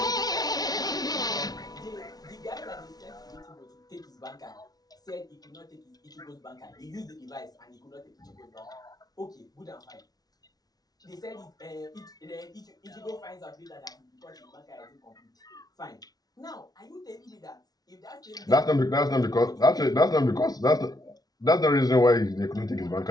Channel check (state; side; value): late; right; 0.19 ms